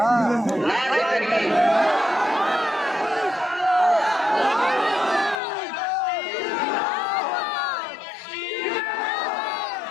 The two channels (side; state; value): right; drops out; at 5.4 s